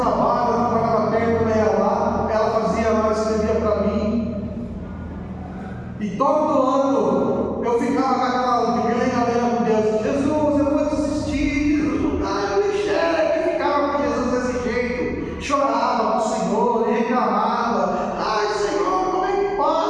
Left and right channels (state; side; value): identical; both; correlation 1.00